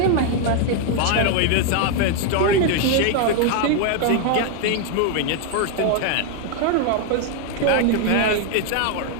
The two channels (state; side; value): different; both; correlation 0.01